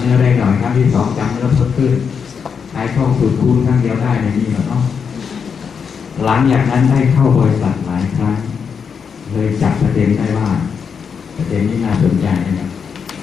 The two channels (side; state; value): right; quieter; 6.4 dB